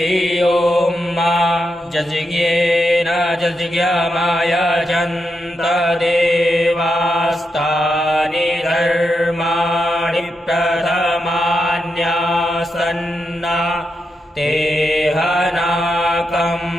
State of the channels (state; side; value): normal; both; correlation 0.85